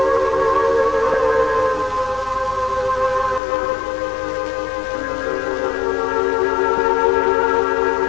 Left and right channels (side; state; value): right; drops out; at 3.4 s